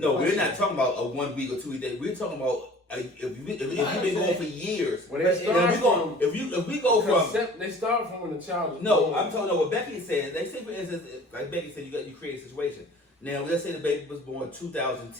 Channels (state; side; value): normal; both; correlation 0.47